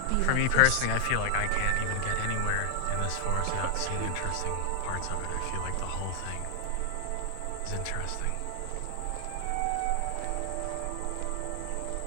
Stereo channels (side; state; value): both; different; correlation 0.00